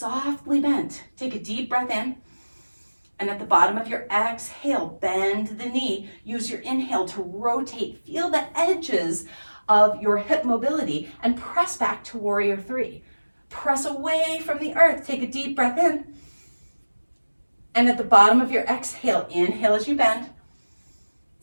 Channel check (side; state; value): both; inverted; correlation -1.00